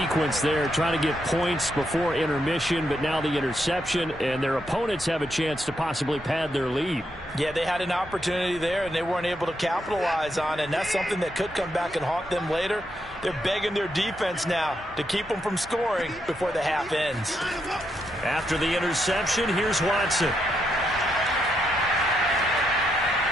there, trying to get points before intermission, but now the interception, and their opponents have a chance to possibly pad their lead. Yeah, they had an opportunity there, and they weren't able to capitalize on it, and that's something that could come back and haunt them later. They're begging their defense now to keep them from scoring before the half ends. After the interception, here's Watson.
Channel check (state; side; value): normal; both; correlation 0.80